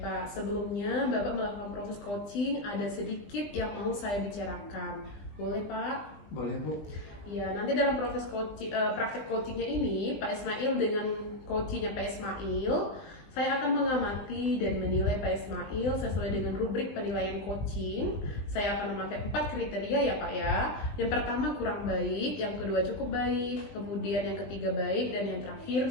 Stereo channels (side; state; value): right; late; 20 ms